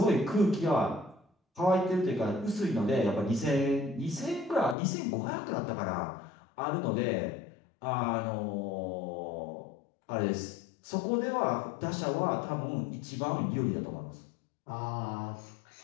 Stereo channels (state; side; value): drops out; right; at 4.8 s